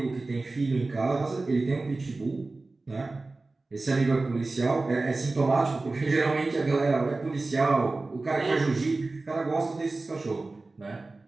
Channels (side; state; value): left; quieter; 3.4 dB